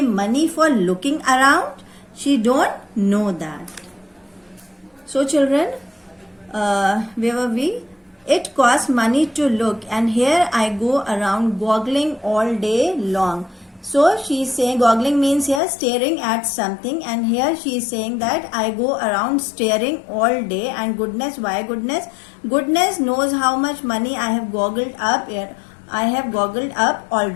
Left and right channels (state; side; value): drops out; right; at 15.6 s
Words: money for looking around? She don't know that. So children, where were we? It costs money to look, and here I go around goggling all day long. So she's saying, goggling means here staring at something, and here she is saying that I go around staring all day. And goodness, why goodness? Goodness knows how much money I have goggled up here. I have goggled up